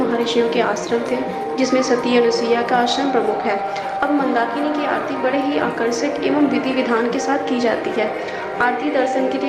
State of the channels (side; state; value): both; identical; correlation 1.00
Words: के आश्रम थे, जिसमें सती अनुसुईया का आश्रम प्रमुख है। अब मंदाकिनी की आरती बड़े ही आकर्षक एवं विधि विधान के साथ की जाती है। आरती दर्शन के